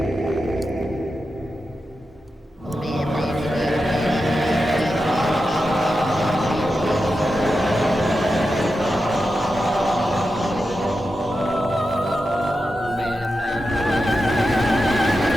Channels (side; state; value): both; normal; correlation 0.90